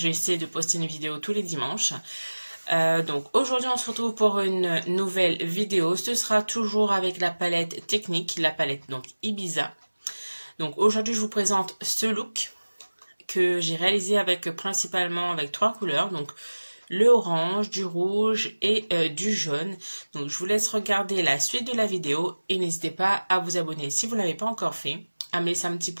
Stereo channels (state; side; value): inverted; both; correlation -1.00